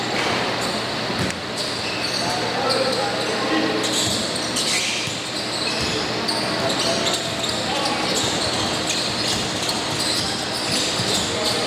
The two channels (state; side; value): identical; both; correlation 1.00